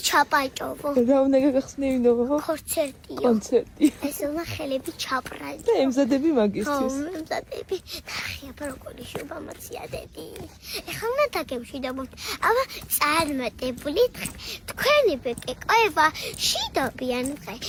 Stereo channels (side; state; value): both; identical; correlation 1.00